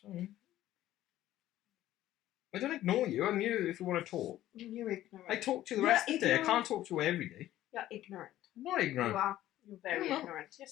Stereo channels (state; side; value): quieter; right; 13.8 dB